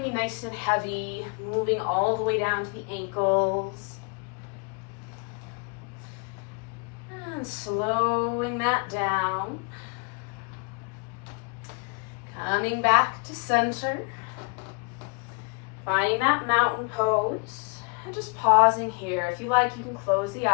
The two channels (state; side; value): quieter; right; 34.5 dB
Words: be nice and heavy. Moving all the way down to the ankles. And slowing that down. Coming back to center. Finding that mountain pose. And just pausing here. If you like, you can close the